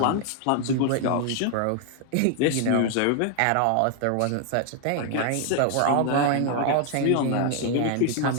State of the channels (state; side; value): different; both; correlation 0.00